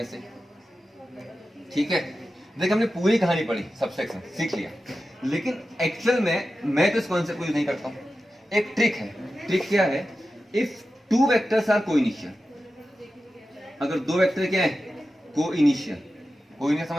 ए। ठीक है, देखिए हमने पूरी कहानी पढ़ी, सब्सट्रैक्शन सीख लिया, लेकिन एक्चुअल में मैं तो इस कॉन्सेप्ट को यूज नहीं करता हूं। एक ट्रिक है। ट्रिक क्या है? इफ 2 वेक्टर्स आर कोइनिशियल, अगर 2 वेक्टर क्या है? कोइनिशियल। कोइनिशियल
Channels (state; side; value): normal; both; correlation 0.92